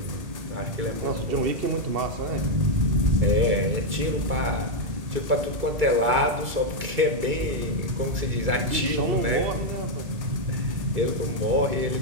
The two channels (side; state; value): left; late; 2.3 ms